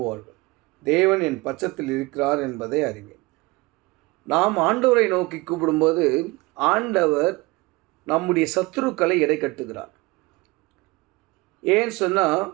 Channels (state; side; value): quieter; left; 22.9 dB